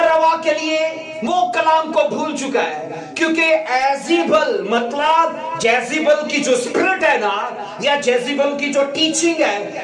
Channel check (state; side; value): identical; both; correlation 1.00